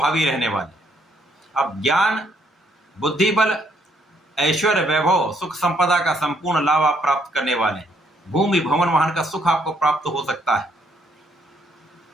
रहने वाले। अब ज्ञान, बुद्धि बल, ऐश्वर्य, वैभव, सुख संपदा का संपूर्ण लाभ आप प्राप्त करने वाले हैं। भूमि, भवन, वाहन का सुख आपको प्राप्त हो सकता है।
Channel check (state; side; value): normal; both; correlation 0.70